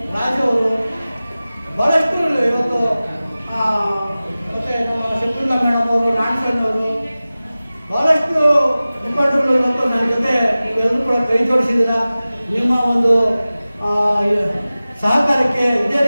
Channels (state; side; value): inverted; both; correlation -0.97